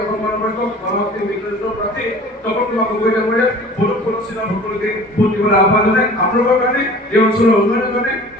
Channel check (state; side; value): normal; both; correlation 0.44